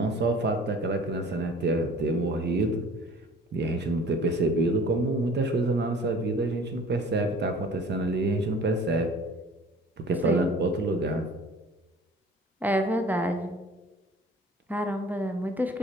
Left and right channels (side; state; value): both; normal; correlation 0.47